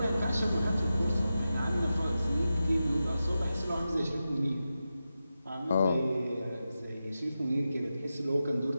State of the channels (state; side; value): inverted; both; correlation -0.91